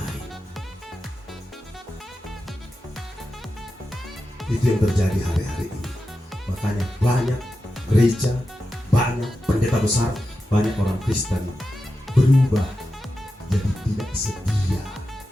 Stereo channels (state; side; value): normal; both; correlation 0.91